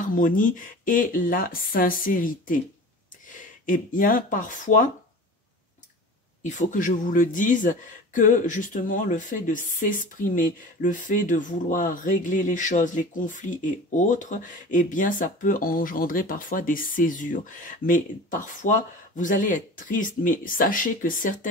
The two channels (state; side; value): normal; both; correlation 0.37